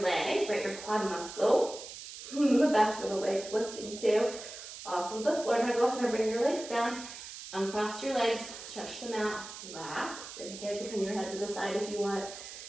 leg, right, your quad muscle, the back of the legs lifting too, off of the floor. Now go ahead and bring your legs down, uncross your legs, stretch them out, relax, inhale, you can turn your head to the side if you want.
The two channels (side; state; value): right; noise; hiss, 12 dB below the sound